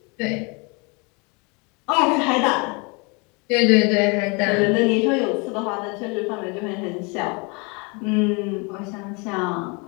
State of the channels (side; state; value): right; quieter; 30.6 dB